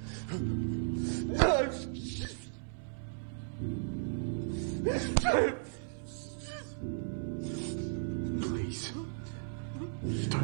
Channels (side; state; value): left; silent; 54 dB below the other